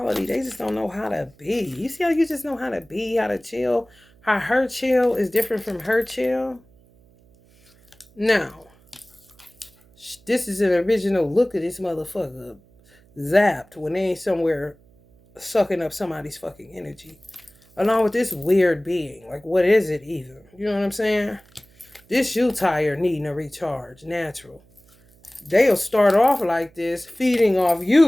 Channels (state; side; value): noise; right; hum, 30 dB below the sound